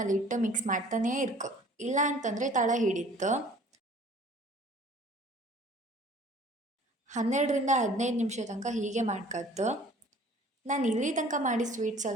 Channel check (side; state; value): both; normal; correlation 0.51